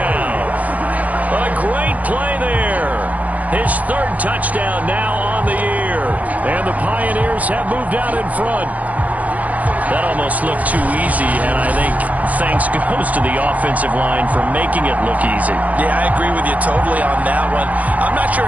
A great play there. His 3rd touchdown now on the year. And the Pioneers have moved out in front. That almost looked too easy, and I think thanks goes to the offensive line for making it look easy. Yeah, I agree with you totally on that one. I'm not sure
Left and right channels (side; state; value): left; late; 0.074 ms